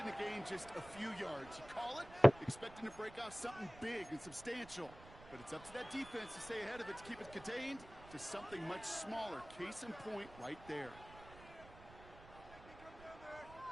to gain just a few yards. You call it expecting to break off something big and substantial. But it's up to that defense to stay ahead of it, to keep it contained to something much smaller. Case in point right there.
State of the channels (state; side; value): noise; right; rumble, 18 dB below the sound